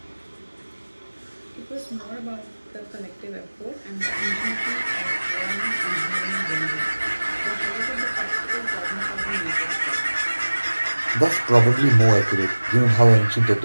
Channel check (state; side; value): inverted; both; correlation -1.00